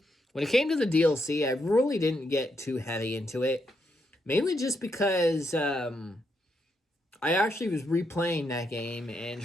When it came to the DLC, I really didn't get too heavy into it, mainly just because I actually was replaying that game and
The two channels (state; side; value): normal; both; correlation 0.80